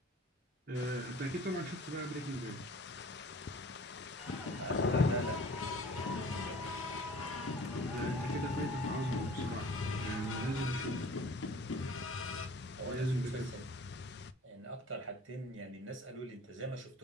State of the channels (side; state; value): both; normal; correlation 0.47